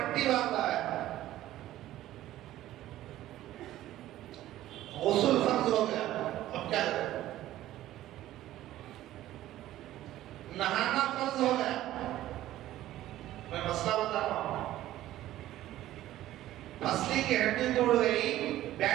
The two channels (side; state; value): left; quieter; 14.2 dB